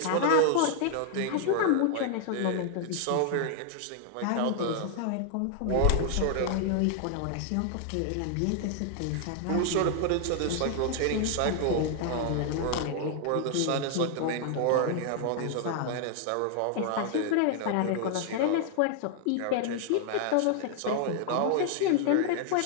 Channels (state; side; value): different; both; correlation 0.00